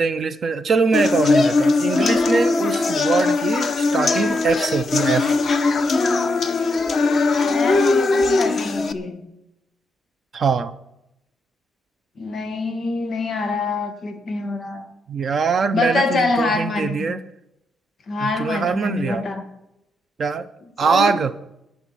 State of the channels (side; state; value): both; normal; correlation 0.80